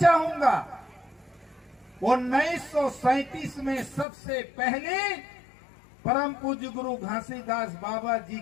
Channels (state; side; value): drops out; right; at 4.0 s